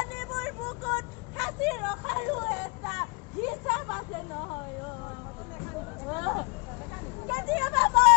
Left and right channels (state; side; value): quieter; right; 31.5 dB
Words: বুকুত সাঁচি ৰখাৰো এটা হিচাপ আছে নহয় কেতিয়াবা